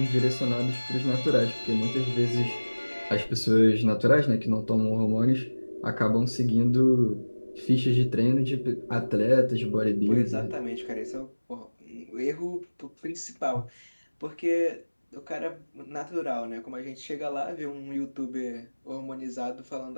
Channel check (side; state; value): both; inverted; correlation -1.00